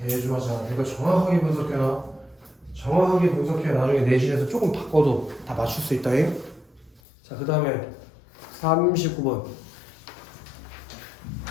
않아. 이거 정확하게 분석해놔. 정확하게 분석해 나중에 내신에서 조금 바꿔도 다 맞출 수 있다잉. 자, 그 다음에 39번.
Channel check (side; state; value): right; drops out; at 7.0 s